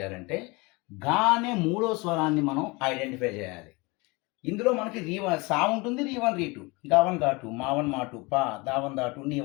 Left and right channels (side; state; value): right; quieter; 25.9 dB